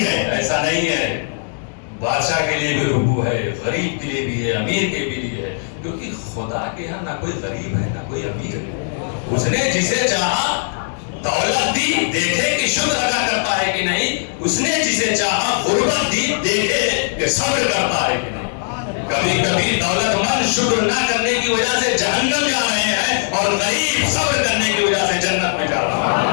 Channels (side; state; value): right; silent; digital silence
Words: ہے، ایسا نہیں ہے. بادشاہ کے لیے بھی رکوع ہے، غریب کے لیے بھی ہے، امیر کے بھی لیے ہے. کیونکہ خدا کے ہاں نہ کوئی غریب ہے نہ کوئی امیر ہے. اس نے جسے چاہا دولت دی، دیکھے کہ شکر ادا کرتا ہے کہ نہیں. اس نے جسے چاہا غربت دی، دیکھے کہ صبر کرتا ہے کہ نہیں. کبھی کبھی دولت مند شکر نہ کرنے کی وجہ سے جہنم جا رہے ہیں اور غریب صبر کرنے کی وجہ سے جنت میں جا رہا